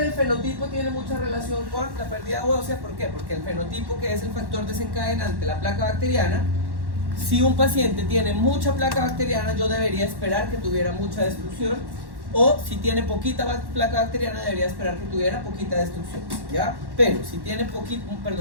del fenotipo tiene mucha relación con la pérdida ósea. ¿Por qué? Porque el fenotipo, que es el factor desencadenante, la placa bacteriana, si un paciente tiene mucha placa bacteriana, yo debería esperar que tuviera mucha destrucción, o si tiene poquita placa bacteriana, debería esperar que tuviera poquita destrucción, ¿ya? Pero si tiene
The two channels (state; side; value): late; left; 1.1 ms